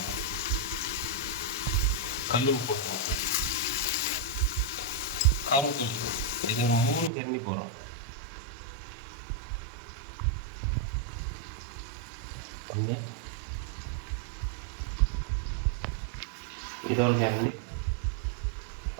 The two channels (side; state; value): left; drops out; at 7.1 s